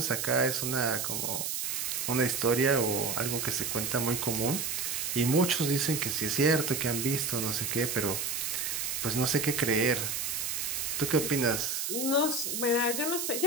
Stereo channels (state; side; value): noise; right; hiss, 2 dB below the sound